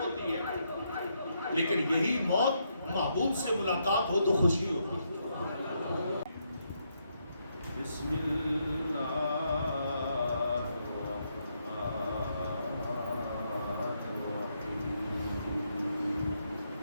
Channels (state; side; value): inverted; both; correlation -0.78